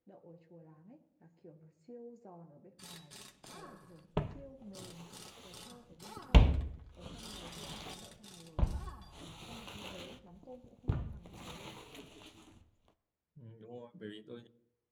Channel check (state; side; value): identical; both; correlation 1.00